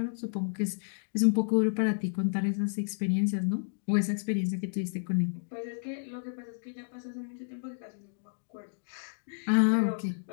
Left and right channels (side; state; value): right; silent; digital silence